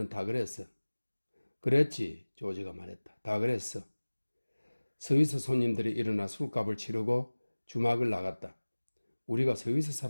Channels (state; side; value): inverted; both; correlation -1.00